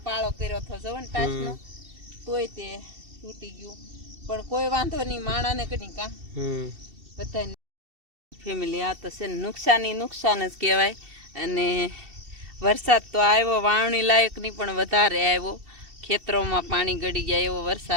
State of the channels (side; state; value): left; late; 2.7 ms